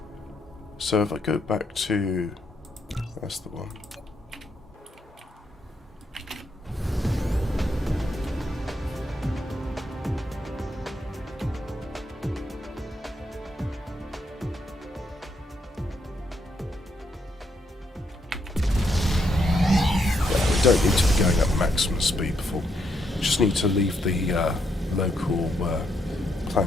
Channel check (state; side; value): normal; both; correlation 0.77